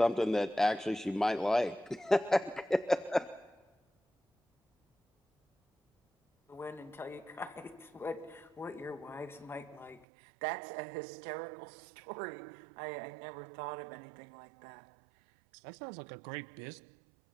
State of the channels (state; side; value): drops out; left; at 10.1 s